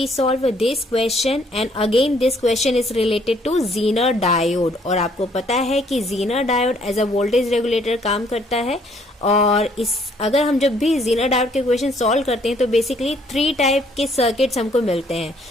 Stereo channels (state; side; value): normal; both; correlation 0.64